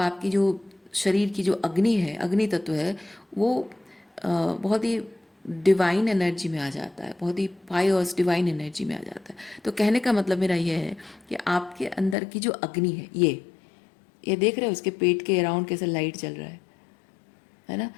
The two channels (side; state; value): right; drops out; at 12.2 s